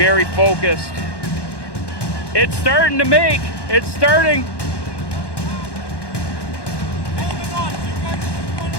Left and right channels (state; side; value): late; right; 1.1 ms